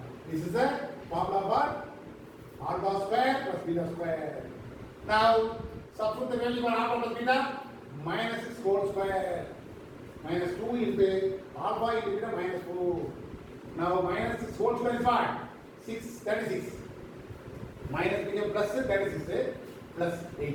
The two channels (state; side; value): identical; both; correlation 1.00